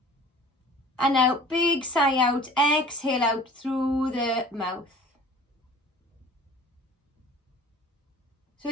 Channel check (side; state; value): both; normal; correlation 0.45